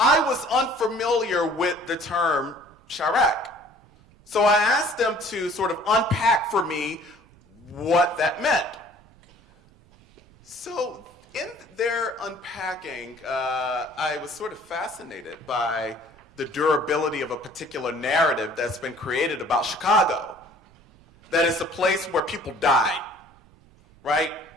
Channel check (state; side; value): noise; right; rumble, 28 dB below the sound